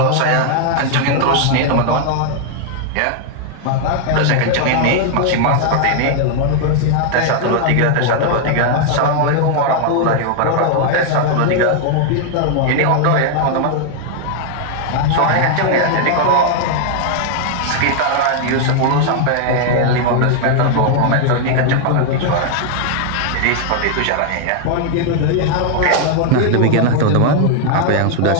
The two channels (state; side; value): different; both; correlation 0.00